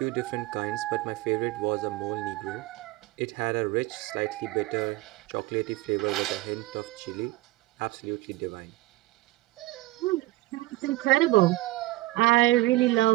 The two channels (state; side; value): quieter; left; 18.3 dB